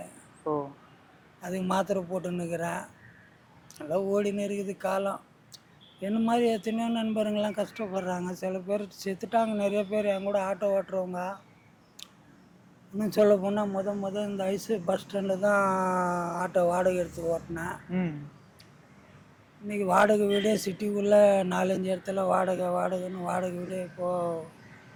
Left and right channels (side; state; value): both; identical; correlation 1.00